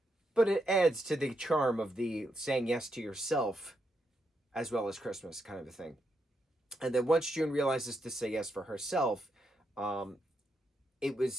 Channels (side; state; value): both; normal; correlation 0.81